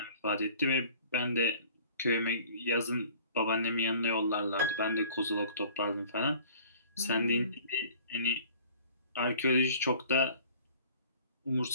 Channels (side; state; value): both; inverted; correlation -0.49